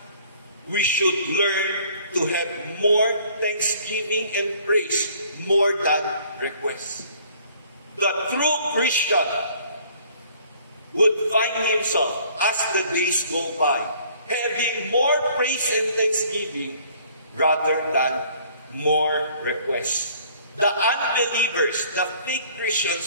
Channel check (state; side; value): inverted; both; correlation -0.56